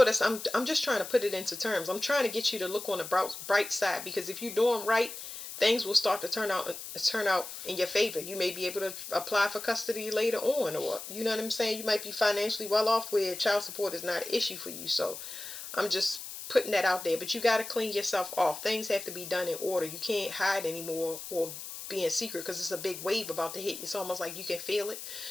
that's, I'm just trying to put it into terms. I'm trying to get you to look on the bright side, because if you're doing right, things will start to turn out in your favor. You may be able to apply for custody later on, or you know what I'm saying. You might be financially well off where child support is not an issue for you. So I'm just putting that out there. But you got to clean yourself off. Things have to be done in order. You can't hide anymore or be in secret, because it's a big wave about to hit. It's almost like you can feel it.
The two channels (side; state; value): left; noise; hiss, 10 dB below the sound